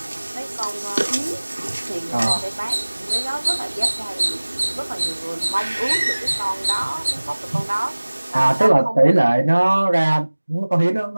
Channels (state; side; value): inverted; both; correlation -1.00